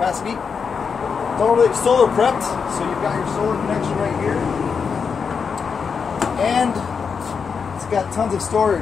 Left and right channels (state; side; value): quieter; right; 5.9 dB